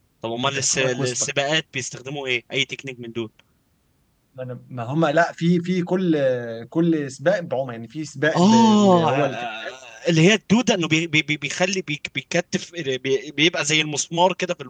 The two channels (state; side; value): identical; both; correlation 1.00